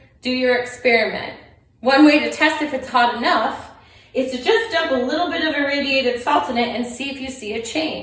do your experiment. One way to test if it's hot enough is to just dump a little bit of irradiated salt in it and see if you see a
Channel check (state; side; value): identical; both; correlation 1.00